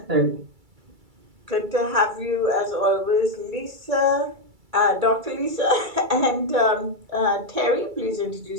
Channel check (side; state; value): left; late; 2.3 ms